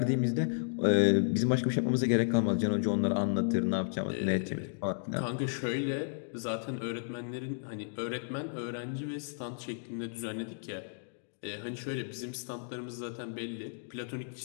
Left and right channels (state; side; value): silent; right; digital silence